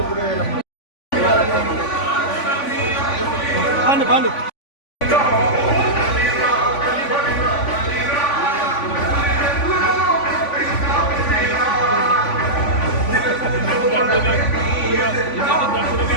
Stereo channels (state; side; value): late; right; 3.5 ms